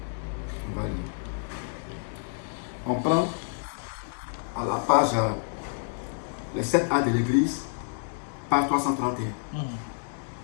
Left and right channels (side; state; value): right; silent; 59 dB below the other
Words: On prend à la page les 7A de l'église, page 331.